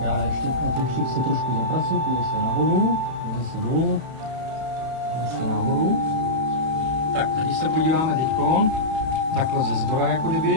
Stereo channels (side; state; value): left; late; 31 ms